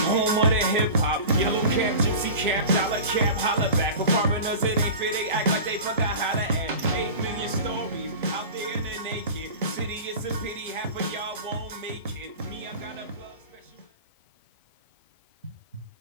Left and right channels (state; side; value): inverted; both; correlation -0.33